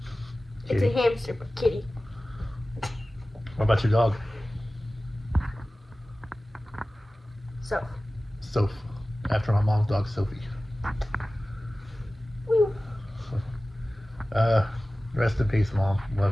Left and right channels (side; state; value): both; normal; correlation 0.97